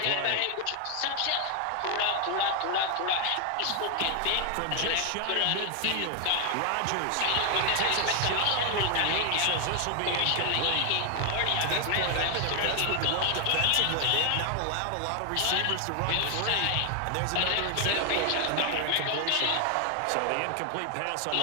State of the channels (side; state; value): both; different; correlation 0.00